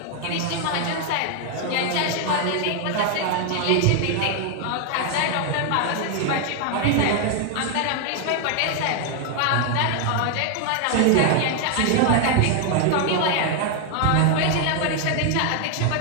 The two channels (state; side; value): different; both; correlation 0.00